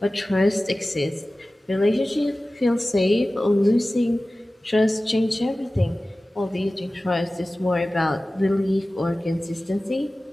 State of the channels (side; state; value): both; normal; correlation 0.97